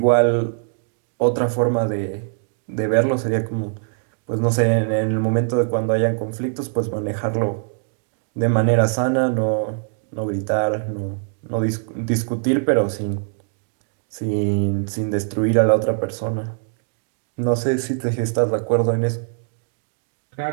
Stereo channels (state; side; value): silent; left; 63 dB below the other